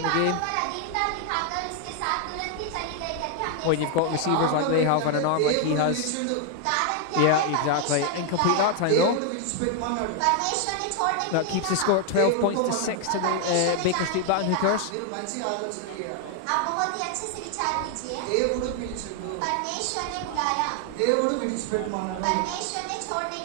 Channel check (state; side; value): different; both; correlation 0.00